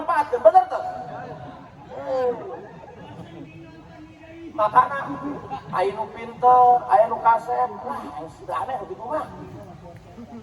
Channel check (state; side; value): identical; both; correlation 1.00